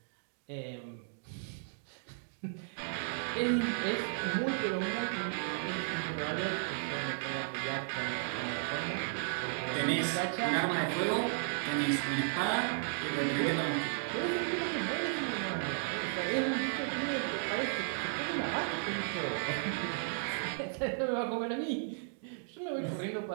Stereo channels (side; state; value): left; silent; digital silence